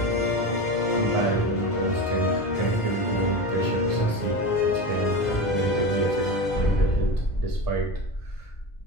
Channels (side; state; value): right; late; 1.5 ms